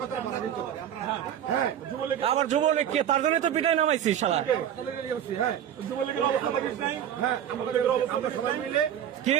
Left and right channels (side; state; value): left; quieter; 9.9 dB